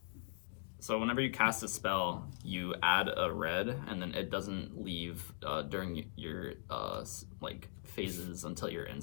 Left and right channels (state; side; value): silent; right; digital silence